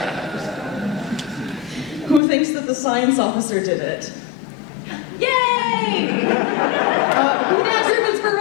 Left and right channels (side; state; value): right; drops out; at 2.2 s